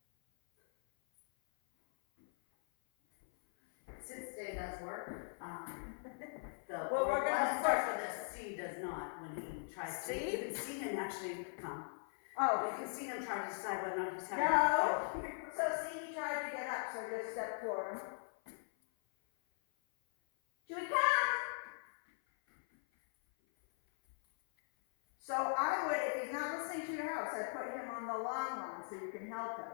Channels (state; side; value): silent; right; 51 dB below the other